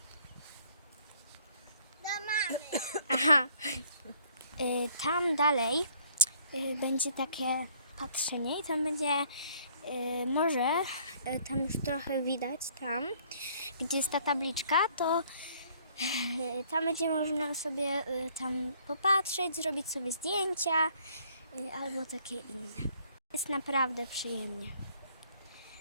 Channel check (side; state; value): both; inverted; correlation -0.60